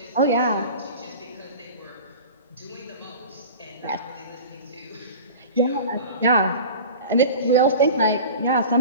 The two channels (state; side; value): inverted; both; correlation -0.36